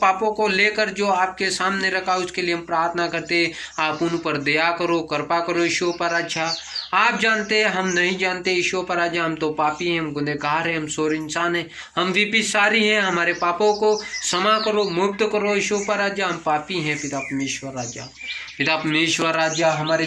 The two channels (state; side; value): identical; both; correlation 1.00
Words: को लेकर जो आपके सामने रखा, उसके लिए हम प्रार्थना करते, आप उन पर दया करो, कृपा करो ईशो पर राजा। आप जानते हैं, हम नहीं जानते ईशो पर राजा, हम तो पापी हैं, हम गुनहगार हैं, हम शोर इंसान हैं, हम विपिसारी हैं, हमारे पापों को क्षमा करो, मुक्त करो ईशो पर राजा। हम पापी हैं पिता परमेश्वर राजा। पिता परमेश्वर राजा, हमारे